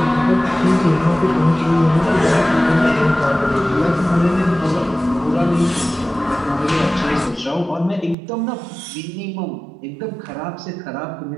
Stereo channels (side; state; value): left; drops out; at 8.2 s